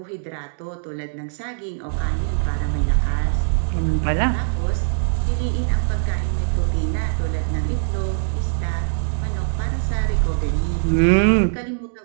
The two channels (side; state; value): left; silent; digital silence